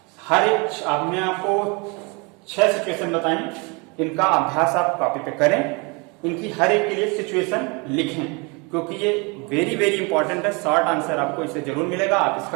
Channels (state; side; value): quieter; left; 30.0 dB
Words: हर एक आपने आपको 6 सिचुएशन बताई, इनका अभ्यास आप कॉपी पे करें, इनकी हर एक के लिए सिचुएशन लिखें, क्योंकि ये वेरी वेरी इंपॉर्टेंट है। शॉर्ट आंसर आपको इससे जरूर मिलेगा। आप